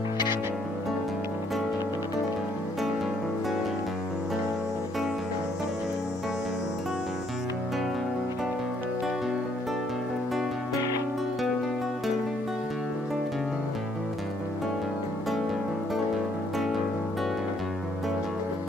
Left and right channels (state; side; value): normal; both; correlation 0.68